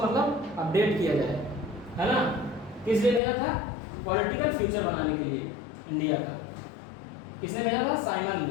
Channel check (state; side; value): drops out; right; at 3.2 s